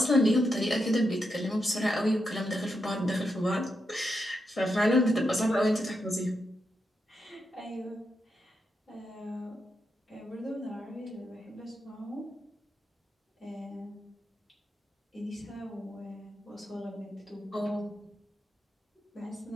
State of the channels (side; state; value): both; normal; correlation 0.85